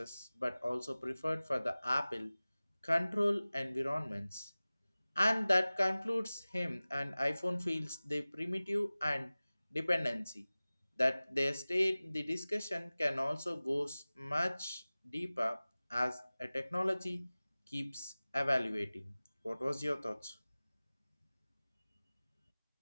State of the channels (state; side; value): inverted; both; correlation -0.98